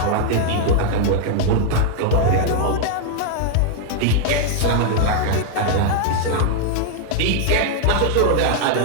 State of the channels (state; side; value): different; both; correlation 0.00